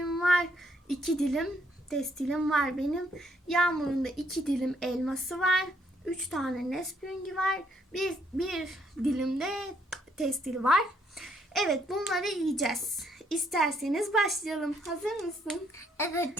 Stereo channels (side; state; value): both; normal; correlation 0.71